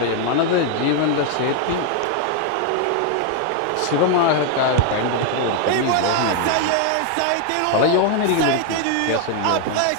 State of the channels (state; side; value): different; both; correlation 0.00